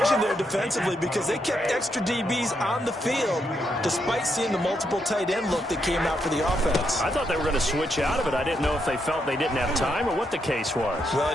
there defensively because they kept extra DBs on the field despite seeing the multiple tight end look that came out for the offense. I thought they were going to switch out of it. I didn't know if they felt they didn't have time or what the case was. Well,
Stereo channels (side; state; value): both; normal; correlation 0.79